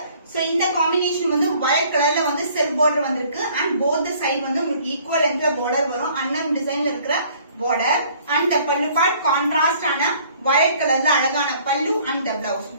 சோ இந்த காம்பினேஷன் வந்து வயலட் கலர்ல வந்து செல்ஃப் பார்டர் வந்திருக்கு. அண்ட் போத் சைடு வந்து உங்களுக்கு ஈக்குவல் லென்த்ல பார்டர் வரும். அன்னம் டிசைன்ல இருக்கிற border. And the pallu part contrast ஆன வயலட் கலர்ல அழகான பல்லு and the blouse.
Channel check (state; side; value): inverted; both; correlation -0.57